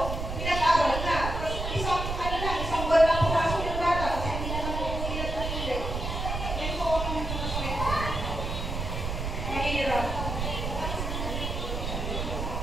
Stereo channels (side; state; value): right; noise; rumble, 3 dB below the sound